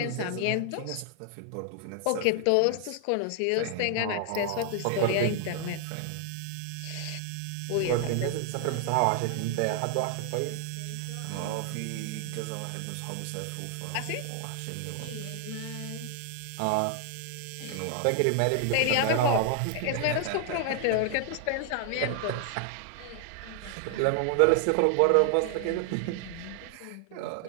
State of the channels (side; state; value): both; different; correlation 0.00